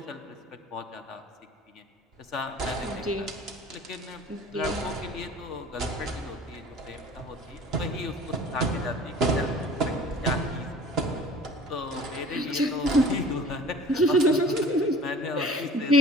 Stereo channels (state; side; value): normal; both; correlation 0.45